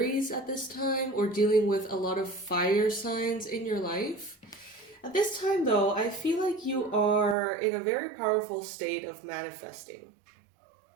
at this time or dealing with a lot of fire signs in your life. At this time though, I feel like you are in a very powerful state of manifesting.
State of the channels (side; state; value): left; drops out; at 7.4 s